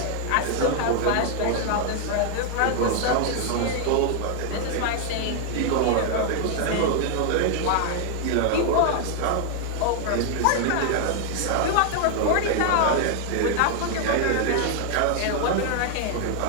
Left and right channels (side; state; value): both; different; correlation 0.00